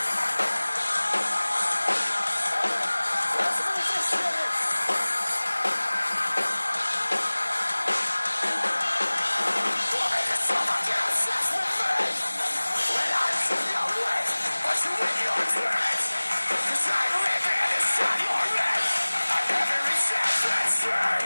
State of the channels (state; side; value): inverted; both; correlation -1.00